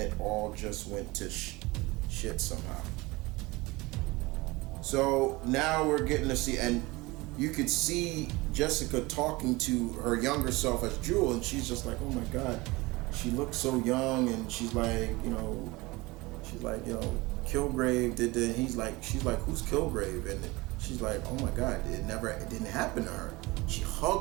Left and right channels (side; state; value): left; quieter; 22.4 dB